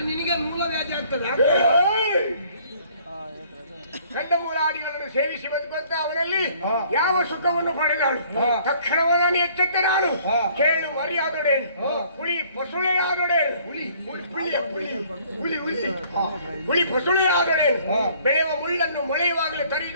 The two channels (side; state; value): both; inverted; correlation -0.58